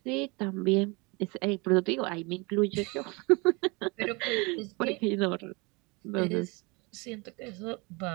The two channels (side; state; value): left; quieter; 28.0 dB